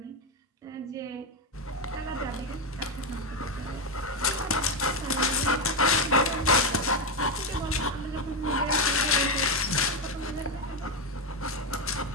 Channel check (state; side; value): normal; both; correlation 0.08